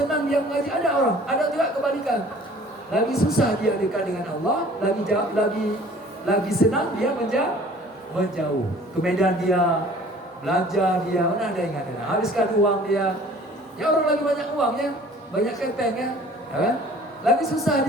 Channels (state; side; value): normal; both; correlation 0.50